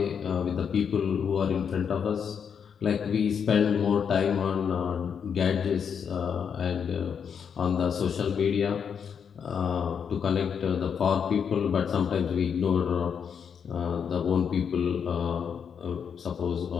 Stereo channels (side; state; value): right; quieter; 7.1 dB